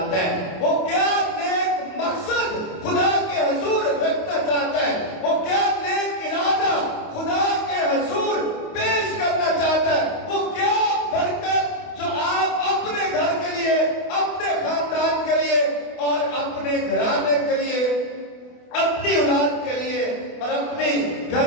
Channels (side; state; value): right; late; 28 ms